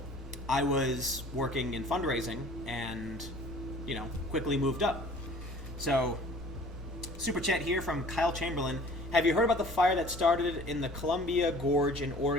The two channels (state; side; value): normal; both; correlation 0.49